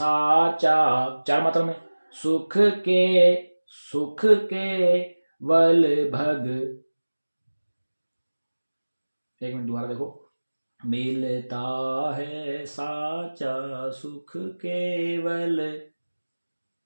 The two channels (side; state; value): both; inverted; correlation -1.00